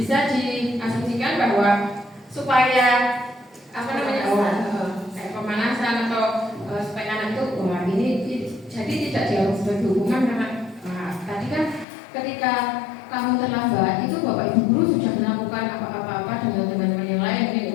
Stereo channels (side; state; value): right; drops out; at 11.9 s